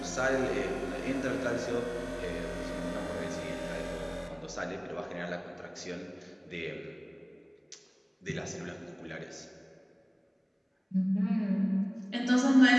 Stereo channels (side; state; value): both; identical; correlation 1.00